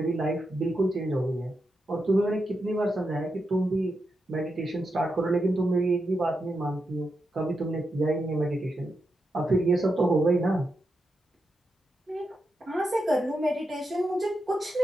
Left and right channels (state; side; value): normal; both; correlation 0.86